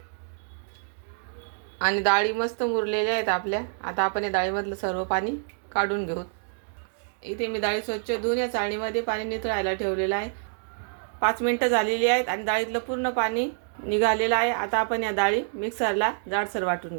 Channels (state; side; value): silent; left; digital silence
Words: आणि डाळी मस्त मुरलेल्या आहेत आपल्या. आता आपण या डाळीमधलं सर्व पाणी काढून घेऊ. इथे मी डाळी स्वच्छ धुवून या चाळणीमध्ये पाणी निथळायला ठेवलेलं आहे. 5 मिनिटं झालेली आहेत आणि डाळीतलं पूर्ण पाणी निघालेलं आहे. आता आपण या डाळी मिक्सरला जाडसर वाटून